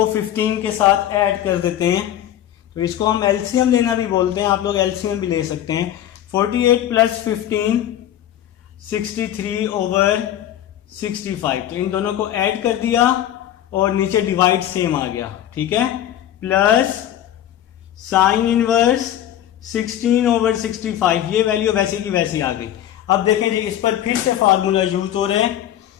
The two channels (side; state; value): right; quieter; 11.6 dB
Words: 15 के साथ ऐड कर देते हैं, तो इसको हम एलसीएम लेना भी बोलते हैं, आप लोग एलसीएम भी ले सकते हैं। 48 प्लस 15 63/65, तो इन दोनों को ऐड कर दिया और नीचे डिवाइड सेम आ गया, ठीक है। प्लस साइन इनवर्स 16/65, ये वैल्यू वैसे की वैसी आ गई। अब देखें जी इस पर फिर से फार्मूला यूज हो रहे हैं,